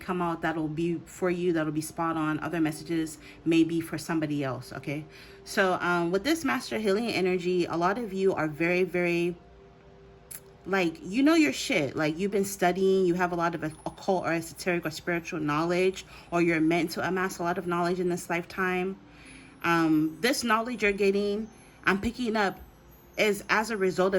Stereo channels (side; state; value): both; identical; correlation 1.00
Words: out that'll be for you, that'll be spot on. Other messages may be for somebody else. Okay, so with this Master Healing energy, a lot of you are very, very, like, you know your shit. Like, you've been studying, you have a lot of occult or esoteric or spiritual knowledge, or you're meant to amass a lot of knowledge in this lifetime. This knowledge you're getting, I'm picking up, is as a result